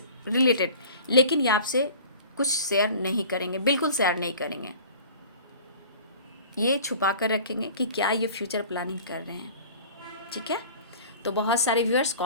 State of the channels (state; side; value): inverted; both; correlation -0.43